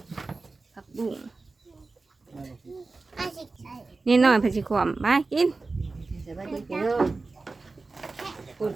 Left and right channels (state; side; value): quieter; left; 3.7 dB